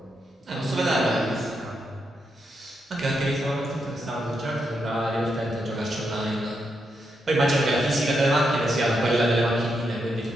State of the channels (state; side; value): normal; both; correlation 0.82